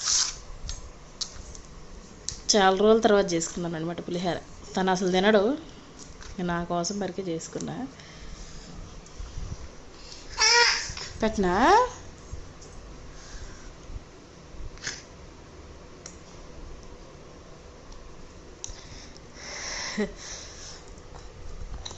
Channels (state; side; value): identical; both; correlation 1.00